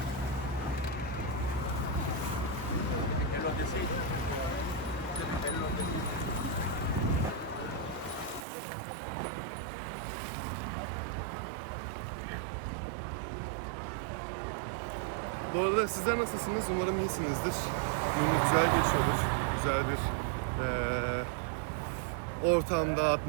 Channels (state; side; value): drops out; left; at 8.5 s